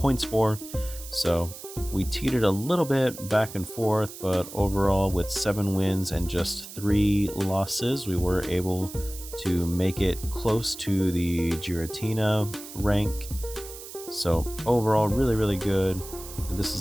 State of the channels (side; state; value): right; noise; hiss, 13 dB below the sound